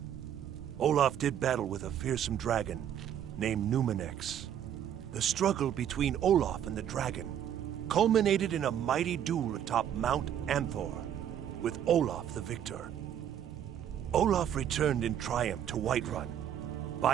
Olaf did battle with a fearsome dragon named Numenex. The struggle between Olaf and the dragon culminated in a mighty duel atop Mount Anthor, with Olaf the victor. Olaf returned in triumph to Whiterun.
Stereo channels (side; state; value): left; quieter; 9.9 dB